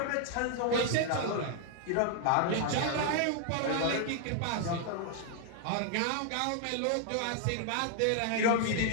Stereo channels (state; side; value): different; both; correlation 0.00